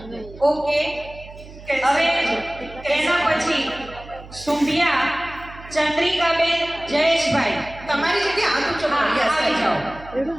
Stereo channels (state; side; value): noise; right; hum, 17 dB below the sound